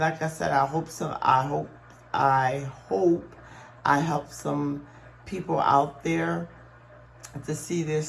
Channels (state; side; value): identical; both; correlation 1.00